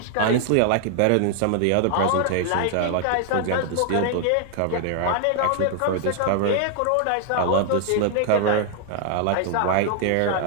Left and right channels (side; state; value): both; different; correlation 0.00